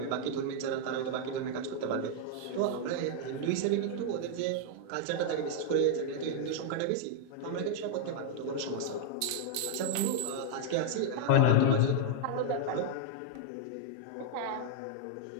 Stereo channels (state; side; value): different; both; correlation 0.00